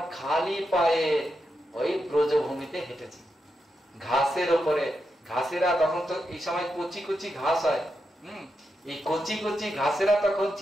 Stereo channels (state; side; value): normal; both; correlation 0.86